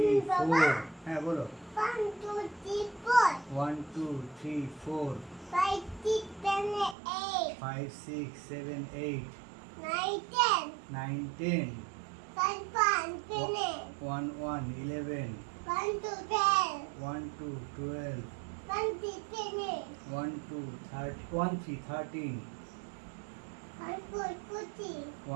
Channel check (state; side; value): drops out; left; at 7.0 s